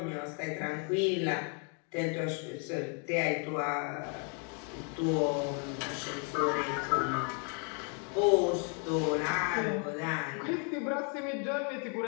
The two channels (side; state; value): right; quieter; 39.7 dB